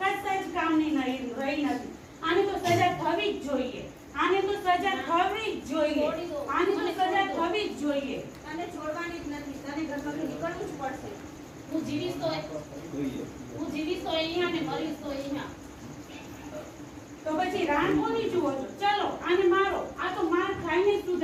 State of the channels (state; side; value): identical; both; correlation 1.00